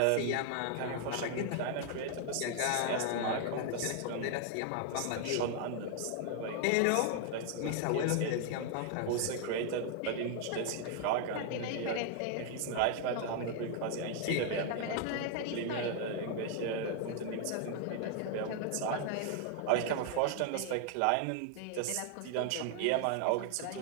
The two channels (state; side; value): different; both; correlation 0.00